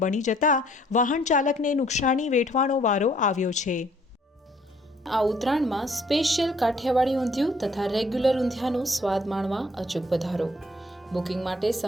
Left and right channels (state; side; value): normal; both; correlation 0.62